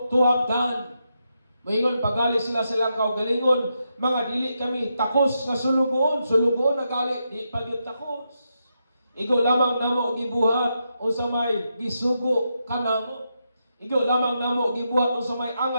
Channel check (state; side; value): inverted; both; correlation -0.84